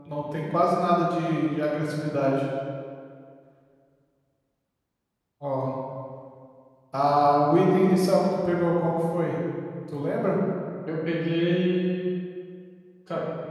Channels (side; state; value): both; identical; correlation 1.00